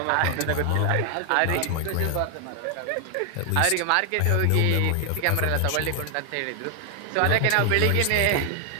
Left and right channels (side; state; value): both; different; correlation 0.00